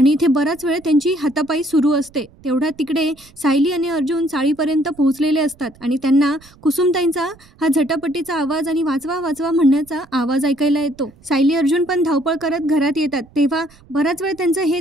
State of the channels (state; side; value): noise; right; rumble, 27 dB below the sound